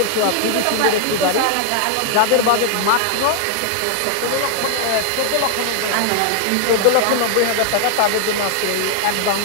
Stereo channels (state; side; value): different; both; correlation 0.00